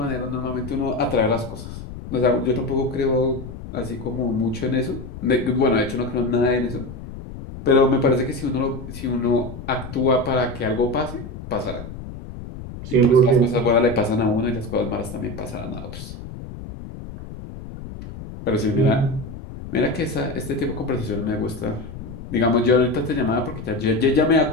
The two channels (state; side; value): noise; left; rumble, 11 dB below the sound